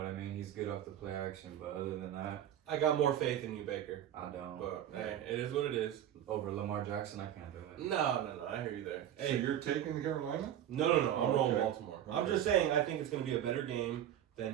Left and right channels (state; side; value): quieter; left; 10.9 dB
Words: I mean? He's good off the play action, but other than that, I got more faith in you, Baker. I don't. But hey, it is what it is. Over Lamar Jackson, I can't do it. No. I hear you there. So Hey, you're taking Carolina? no. I'm rolling Okay. Baltimore. I'm Okay. just saying I think it's going to be a better game